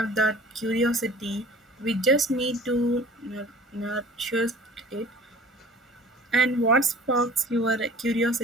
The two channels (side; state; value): both; normal; correlation 0.46